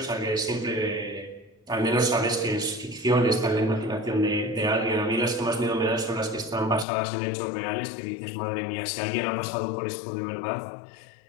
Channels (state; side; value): drops out; right; at 6.9 s